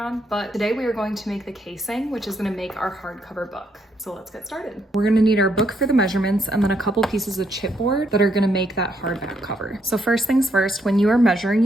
but today we are going to make the casing, which is going to make our hardcover book. So let's get started. We're going to need our book for the measurements and then a couple pieces of chipboard that are going to make that hardback cover. So first things first, when you are measuring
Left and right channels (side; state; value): both; normal; correlation 0.74